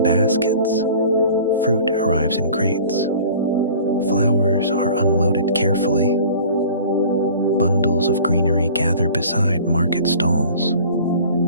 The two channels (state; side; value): inverted; both; correlation -0.45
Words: baskets. Fruit arrives in crates. Flowers are unloaded carefully. Bundles of greenery gather beside market stalls.